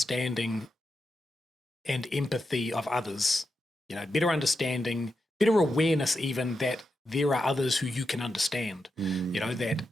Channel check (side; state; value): both; normal; correlation 0.87